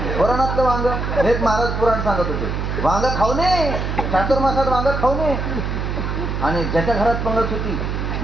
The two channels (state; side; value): noise; right; hum, 2 dB below the sound